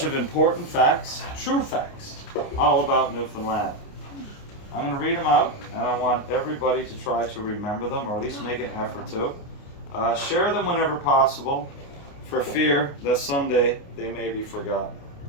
of important facts, true facts, all about Newfoundland. I'm going to read them out, and I want everybody to try to remember them, or at least make an effort to. Share them whenever possible, for fear that someday they may be forgotten.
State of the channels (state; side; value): late; right; 28 ms